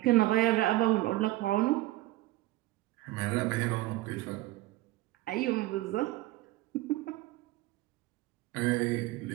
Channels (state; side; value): quieter; left; 17.5 dB